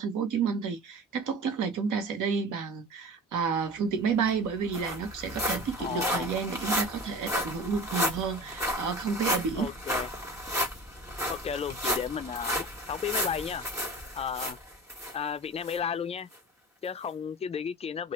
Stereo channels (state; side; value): normal; both; correlation 0.36